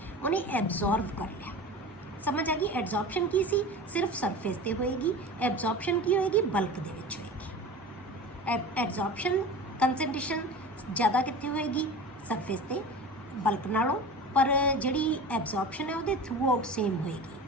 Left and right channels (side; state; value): both; normal; correlation 0.34